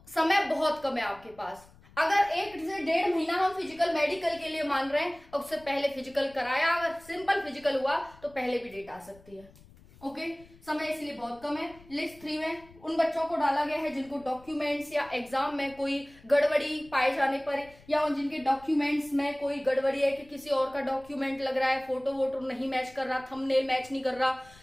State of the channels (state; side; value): noise; left; rumble, 24 dB below the sound